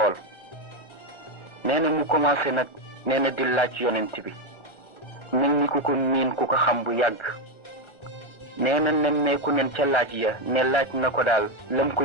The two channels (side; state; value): right; late; 1.4 ms